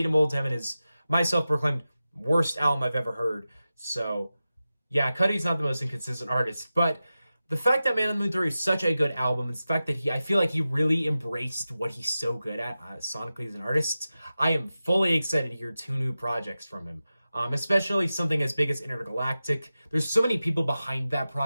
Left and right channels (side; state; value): both; inverted; correlation -0.94